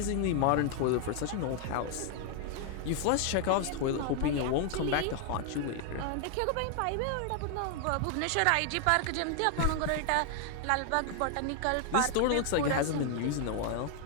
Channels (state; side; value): different; both; correlation 0.00